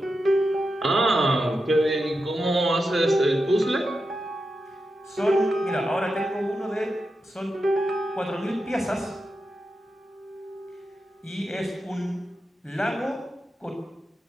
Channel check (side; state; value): both; normal; correlation 0.89